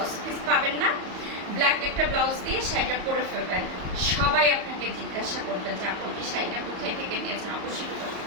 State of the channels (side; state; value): left; late; 34 ms